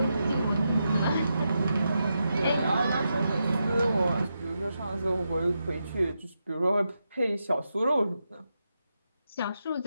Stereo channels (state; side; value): inverted; both; correlation -0.86